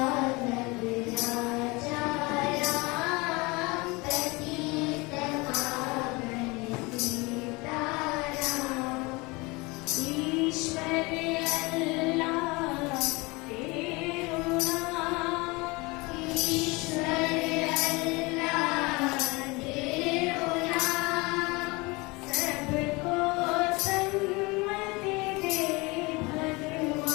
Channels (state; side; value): quieter; right; 25.2 dB